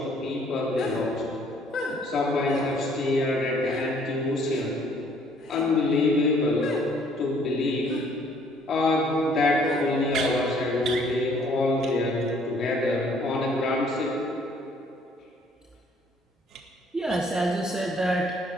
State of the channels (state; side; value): normal; both; correlation 0.61